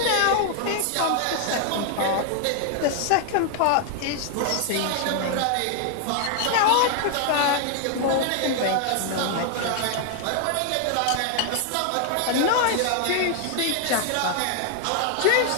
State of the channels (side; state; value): both; different; correlation 0.00